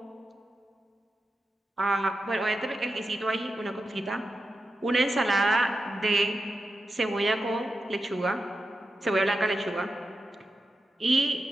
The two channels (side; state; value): both; normal; correlation 0.89